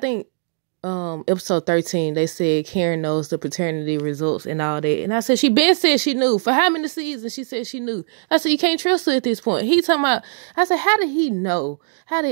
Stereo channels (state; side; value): silent; left; digital silence